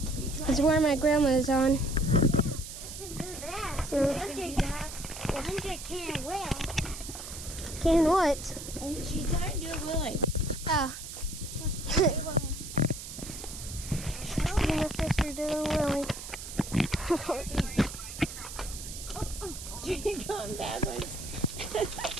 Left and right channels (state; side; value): noise; right; hiss, 10 dB below the sound